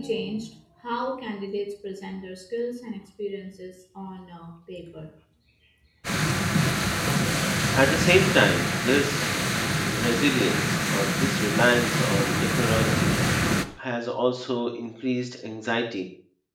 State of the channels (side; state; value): both; identical; correlation 1.00